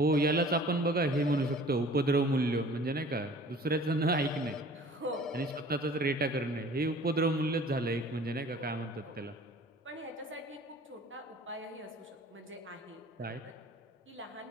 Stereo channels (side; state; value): both; normal; correlation 0.48